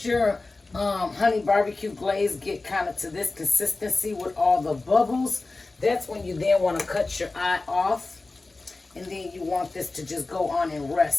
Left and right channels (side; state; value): right; quieter; 3.4 dB